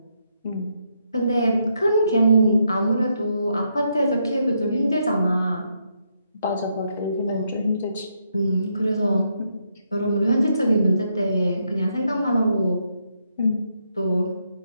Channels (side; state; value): both; inverted; correlation -0.78